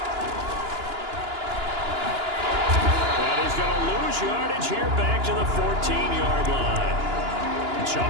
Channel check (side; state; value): left; late; 2.9 ms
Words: He's going to lose yardage here back to the 14-yard line.